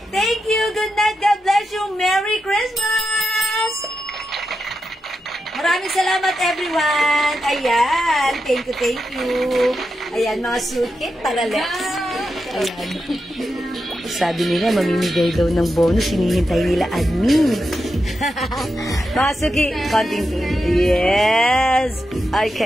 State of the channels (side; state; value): both; normal; correlation 0.87